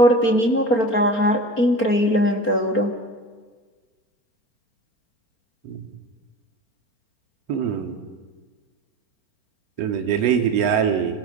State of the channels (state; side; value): late; right; 4.4 ms